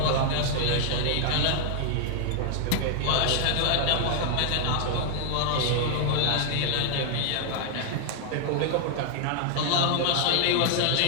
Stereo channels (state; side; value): different; both; correlation 0.00